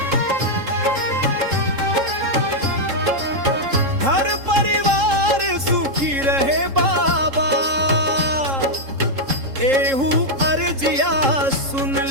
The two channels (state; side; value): late; left; 3.7 ms